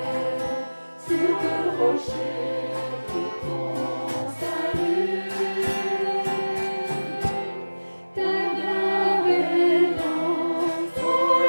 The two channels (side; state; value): both; inverted; correlation -1.00